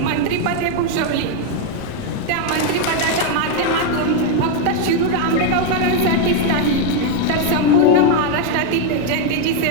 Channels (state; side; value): different; both; correlation 0.01